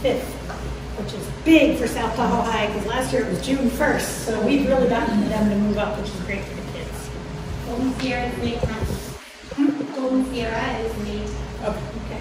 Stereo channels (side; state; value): both; identical; correlation 1.00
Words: which is big for South Tahoe High, because last year it was June 1st. So we've really gotten them to move up, which is great for the kids. Golden Sierra is May 10th. Golden Sierra is May. Okay,